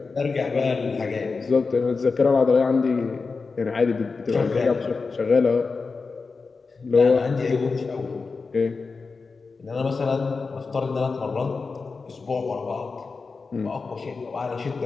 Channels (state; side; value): quieter; right; 4.4 dB